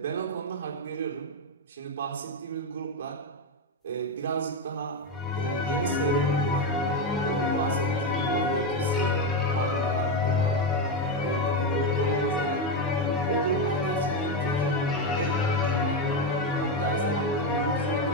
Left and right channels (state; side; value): normal; both; correlation 0.09